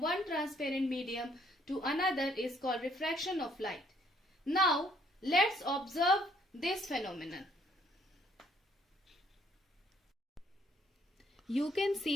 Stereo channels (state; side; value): normal; both; correlation 0.66